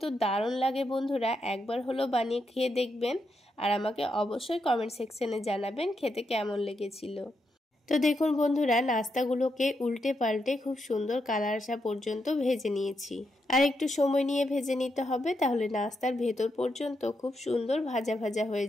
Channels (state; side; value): normal; both; correlation 0.82